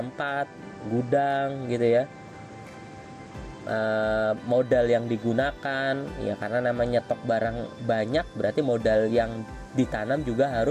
gudang gitu ya, modal yang digunakan ya, karena namanya stok barang banyak berarti modal yang ditanam juga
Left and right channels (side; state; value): both; identical; correlation 1.00